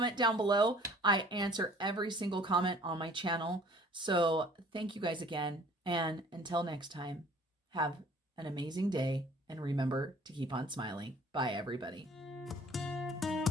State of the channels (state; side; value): normal; both; correlation 0.52